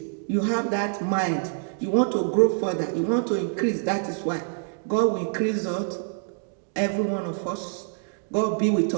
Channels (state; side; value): silent; left; digital silence